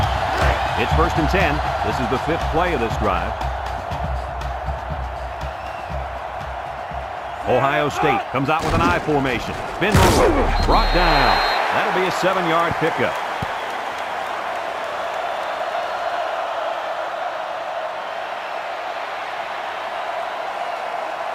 It's first and 10. This is the 5th play of this drive. Ohio State comes out with an I formation. Spin move. Brought down. That'll be a 7-yard pickup.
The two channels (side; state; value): both; identical; correlation 1.00